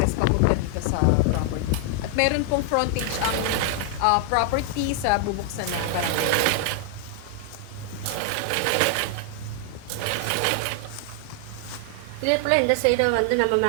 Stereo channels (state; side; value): different; both; correlation 0.00